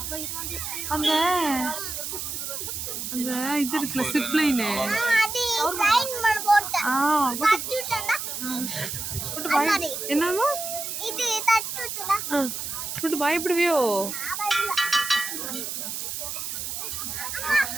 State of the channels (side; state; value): right; noise; hiss, 5 dB below the sound